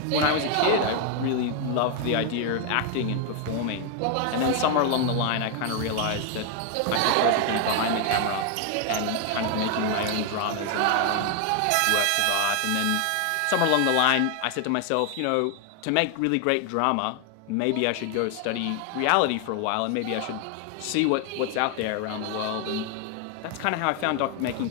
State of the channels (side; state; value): both; different; correlation 0.00